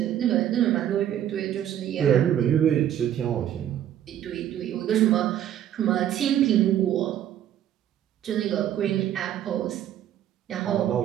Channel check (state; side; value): quieter; left; 11.0 dB